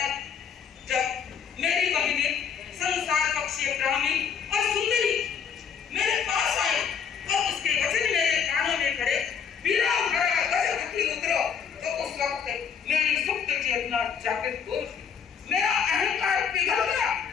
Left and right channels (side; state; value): right; quieter; 7.1 dB